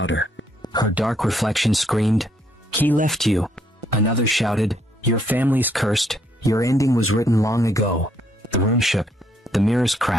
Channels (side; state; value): both; normal; correlation 0.71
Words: Her dark reflection screamed, he left you. Another shouted, your family's cursed. Your ending was written long ago. The room shook. The mirrors